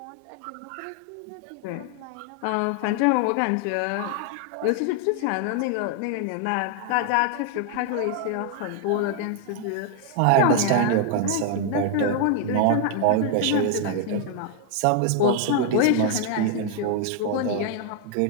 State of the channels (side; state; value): both; different; correlation 0.00